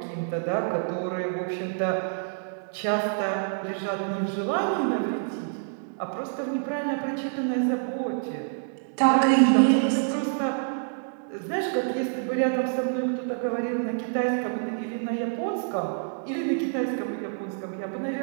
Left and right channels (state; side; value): silent; left; digital silence